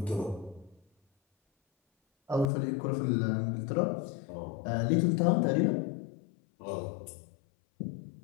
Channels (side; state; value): right; drops out; at 2.5 s